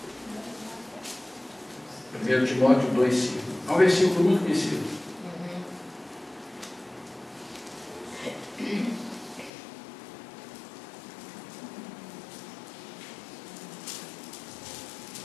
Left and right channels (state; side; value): drops out; right; at 9.5 s